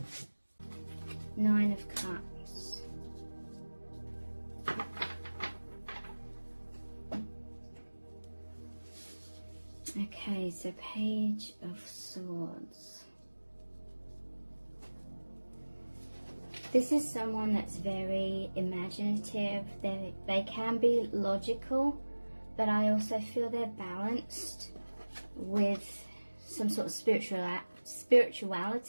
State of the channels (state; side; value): inverted; both; correlation -1.00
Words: Nine of Cups. Okay, so Page of Swords. This is someone that's very imaginative. They can be logical, but I also feel they're balanced with some sort of